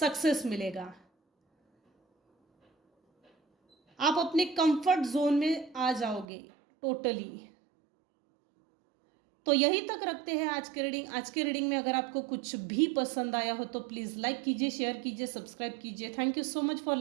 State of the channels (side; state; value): left; drops out; at 6.2 s